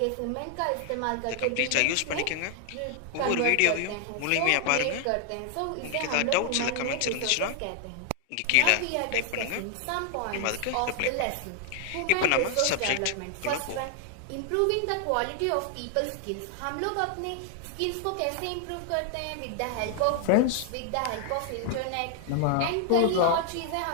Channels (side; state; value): both; different; correlation 0.00